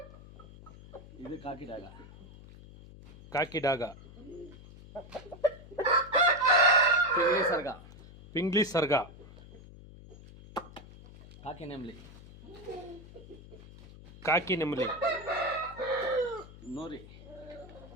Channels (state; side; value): noise; left; hum, 18 dB below the sound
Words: ಇದು ಕಾಕಿ ಡ್ಯಾಗ ಕಾಕಿ ಡಾಗ ಪಿಂಗ್ಲಿ ಸರ್ಗ ಪಿಂಗ್ಲಿ ಸರ್ಗ ಕಾಕಿ ನೆಮ್ಲಿ ಕಾಕಿ ನೆಮಲಿ ನೂರಿ